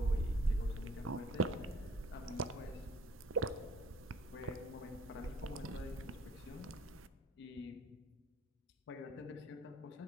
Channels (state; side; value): normal; both; correlation 0.58